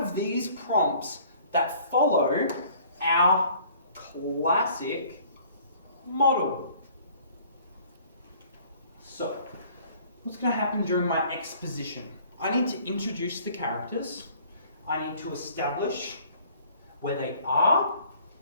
these prompts that follow our classic model. So, what's going to happen during my exposition? I need to introduce the characters, I need to establish where they are,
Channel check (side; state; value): both; inverted; correlation -0.54